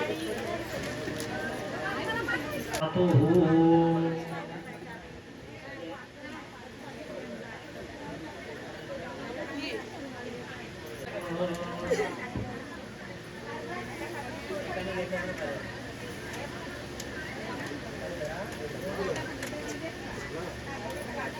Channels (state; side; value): identical; both; correlation 1.00